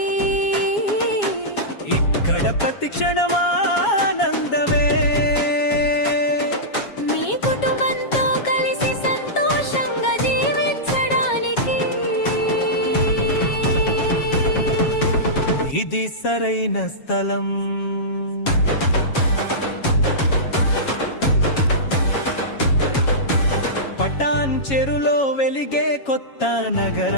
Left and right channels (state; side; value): late; right; 7.3 ms